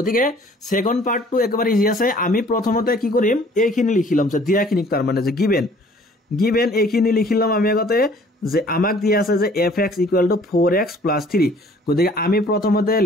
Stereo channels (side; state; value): both; normal; correlation 0.55